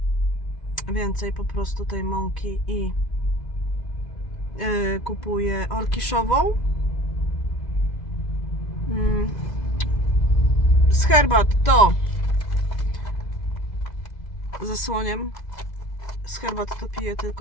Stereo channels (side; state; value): right; late; 2.0 ms